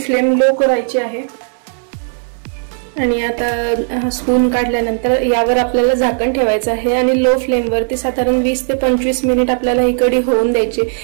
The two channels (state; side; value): silent; left; digital silence